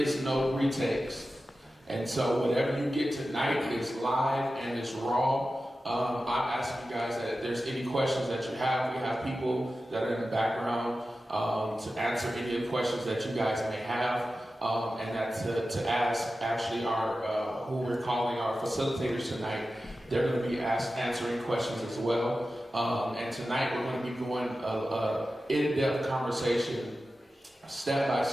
no retakes. And so whatever you get tonight is live and it's raw. I'm asking you guys that if there's any questions that you have, we have people that are in the background to answer any of the questions that you guys may have, and that to ask actually our who we're calling our facilitators tonight. They're going to be answering questions as well. And tonight we're going to be going an in-depth conversation, step by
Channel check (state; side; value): normal; both; correlation 0.93